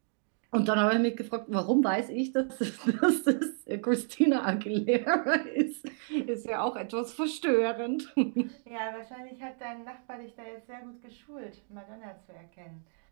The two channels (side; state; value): left; silent; 57 dB below the other